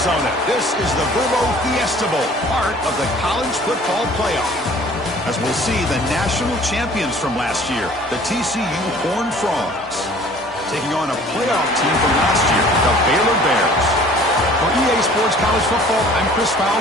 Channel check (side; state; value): both; normal; correlation 0.51